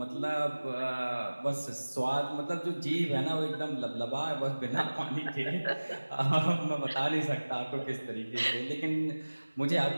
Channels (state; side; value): inverted; both; correlation -1.00